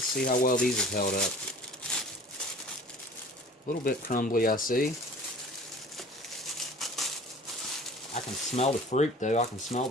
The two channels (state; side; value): normal; both; correlation 0.45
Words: see how well these have held up. A little bit crumbly, I see. I can smell the fruit though. I can smell